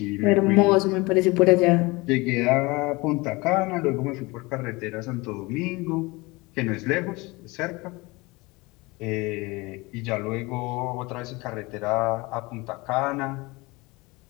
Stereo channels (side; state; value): right; quieter; 23.9 dB